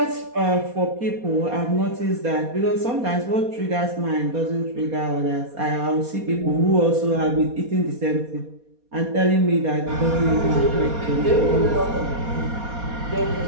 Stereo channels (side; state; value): left; late; 4.2 ms